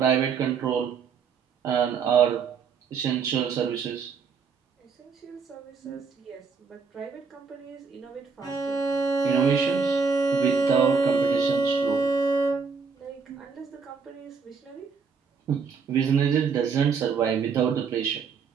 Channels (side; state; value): left; quieter; 5.6 dB